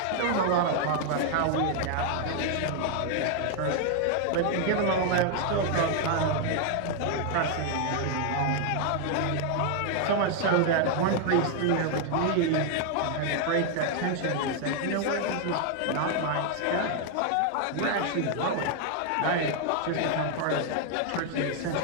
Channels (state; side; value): different; both; correlation 0.00